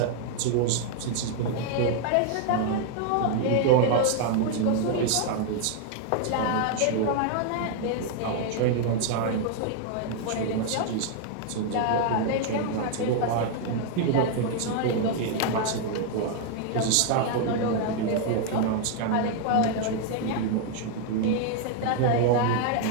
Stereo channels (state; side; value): different; both; correlation 0.00